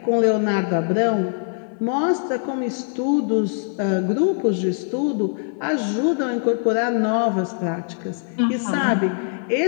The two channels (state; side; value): silent; right; 64 dB below the other